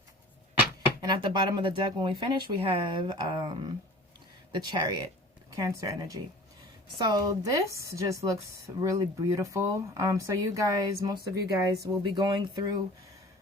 And at the bottom of the deck, when we finish, we have the Chariot, Cancer energy. So this just looks really beautiful. So you guys, most of you guys will be going through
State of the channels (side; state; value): both; normal; correlation 0.43